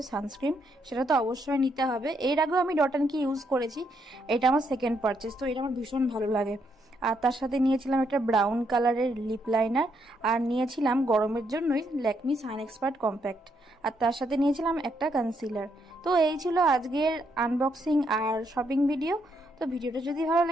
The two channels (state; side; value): normal; both; correlation 0.76